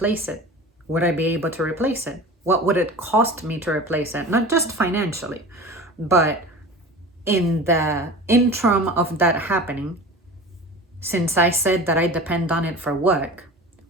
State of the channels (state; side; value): normal; both; correlation 0.36